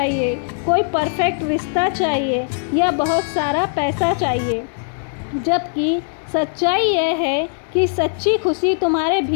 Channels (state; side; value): silent; right; digital silence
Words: कोई परफेक्ट रिश्ता चाहिए या बहुत सारा पैसा चाहिए। जबकि सच्चाई यह है कि सच्ची खुशी तुम्हारे